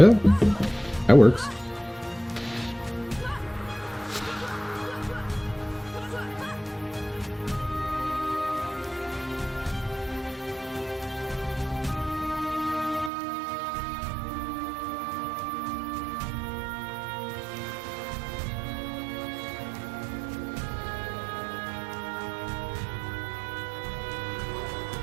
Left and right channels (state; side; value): drops out; left; at 13.1 s